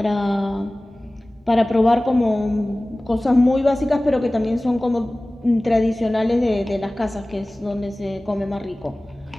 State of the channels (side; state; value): both; normal; correlation 0.98